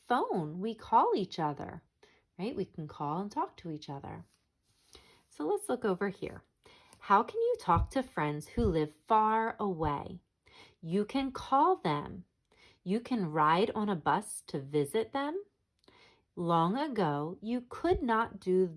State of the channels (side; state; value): both; identical; correlation 1.00